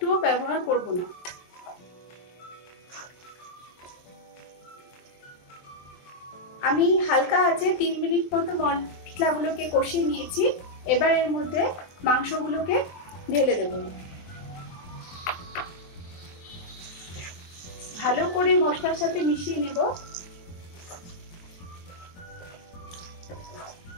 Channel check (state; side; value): late; right; 23 ms